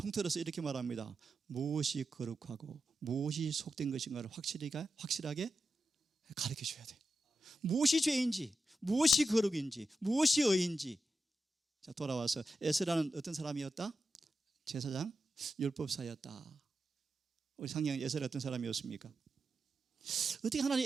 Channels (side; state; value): both; normal; correlation 0.89